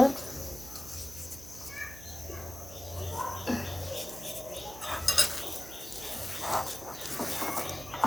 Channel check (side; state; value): right; noise; hum, 15 dB below the sound